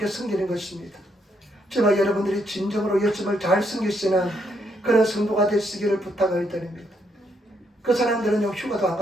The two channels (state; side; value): normal; both; correlation 0.75